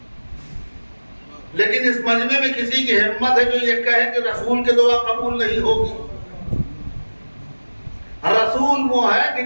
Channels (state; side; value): inverted; both; correlation -1.00